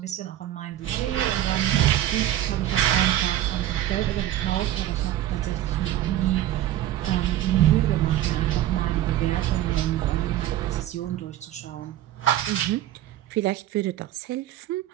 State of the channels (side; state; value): left; quieter; 13.1 dB